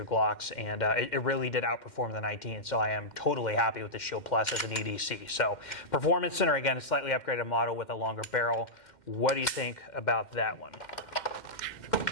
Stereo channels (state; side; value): late; right; 2.1 ms